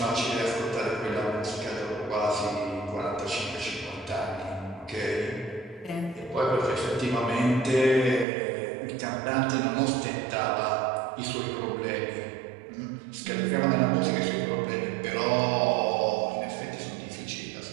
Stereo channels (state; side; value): drops out; left; at 8.2 s